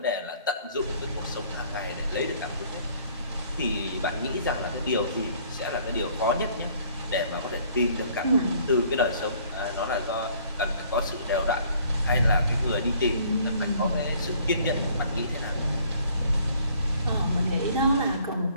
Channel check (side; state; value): both; inverted; correlation -0.58